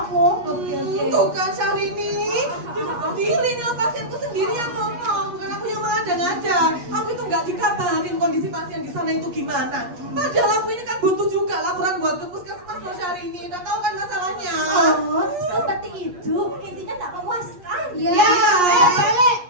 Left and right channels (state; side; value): late; left; 8.4 ms